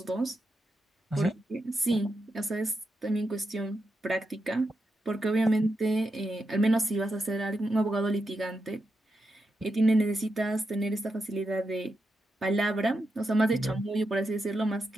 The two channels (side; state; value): both; normal; correlation 0.86